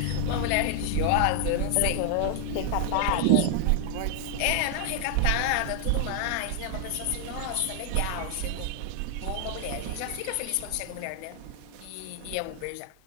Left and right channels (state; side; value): different; both; correlation 0.00